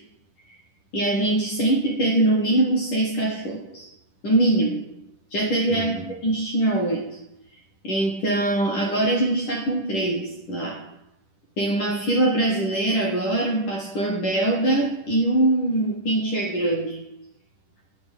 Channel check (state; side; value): late; right; 10 ms